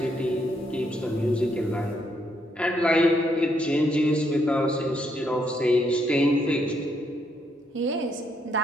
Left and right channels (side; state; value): both; normal; correlation 0.74